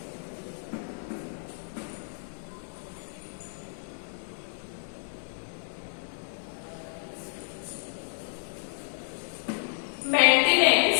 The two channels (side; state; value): right; silent; digital silence